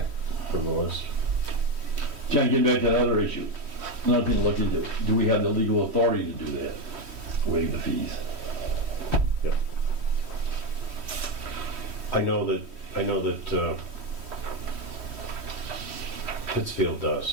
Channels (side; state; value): left; late; 3.1 ms